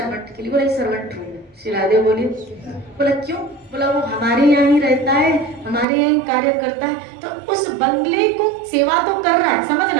के लिए। बोला सर्वेंट रूम है। श्री राधे बोली, बोला क्यों? बोला वो हमारे यहाँ ही रहता है, हमारे यहाँ ही कार्य करता है, तो उस बंगले को सेवा तो कर रहा है,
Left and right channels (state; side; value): drops out; left; at 5.9 s